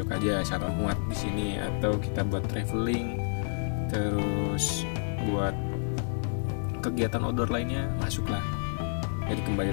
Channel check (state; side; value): silent; right; 58 dB below the other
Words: aja, asal muat di sini, atau kita buat traveling, terus buat kegiatan outdoor lainnya masuklah. Jadi kembali